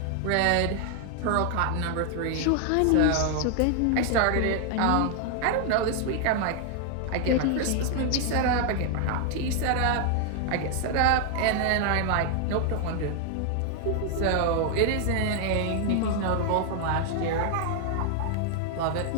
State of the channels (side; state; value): both; different; correlation 0.00